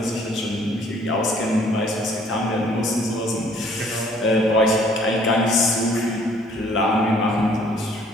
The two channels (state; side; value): normal; both; correlation 0.59